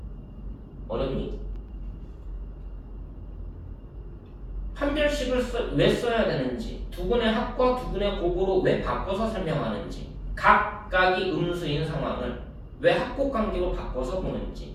어렵니? 판별식을 왜 써야 되는지, 두근의 합과 두근의 곱으로 왜 바꿔서 설명하는지, 각각이 음수인 상황을 왜 합곡관계로 바꿔서 보는지.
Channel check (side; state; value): both; identical; correlation 1.00